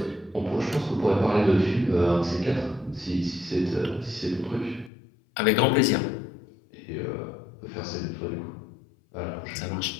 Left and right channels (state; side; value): drops out; right; at 4.9 s